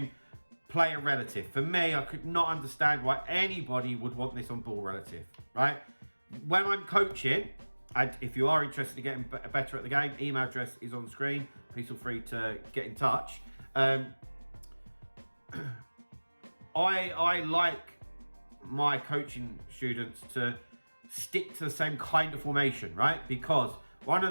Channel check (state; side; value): inverted; both; correlation -1.00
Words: player relative. For me, I could not understand why anybody would want this on ball relative, right? When I'm coaching, and if you are interested in getting better at the game, email address is on screen. Please feel free to get in touch. I like my coaching students to stick to the same kind of formation, right? Because one of